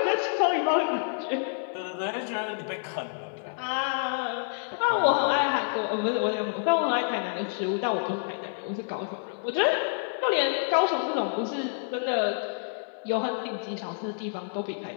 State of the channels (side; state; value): right; silent; 56 dB below the other